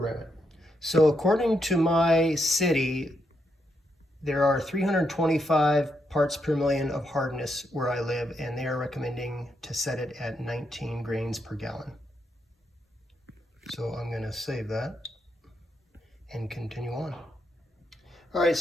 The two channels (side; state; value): both; normal; correlation 0.80